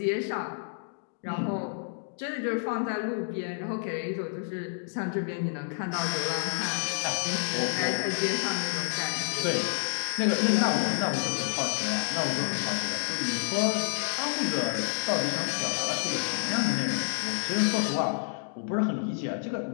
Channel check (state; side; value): silent; right; digital silence